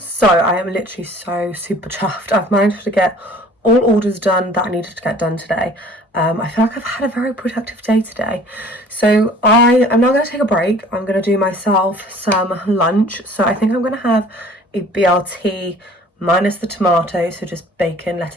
So I am literally so super chuffed. I've managed to get all orders done that I needed to get done today. I feel like I've had a very productive day today. So I am now going to take a break. I'm going to do myself some lunch. So I think I'm going to have a BLT minus the tomato, so just bacon,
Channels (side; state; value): both; normal; correlation 0.50